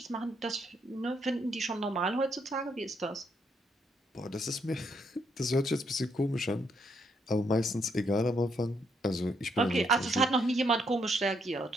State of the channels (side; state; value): both; normal; correlation 0.75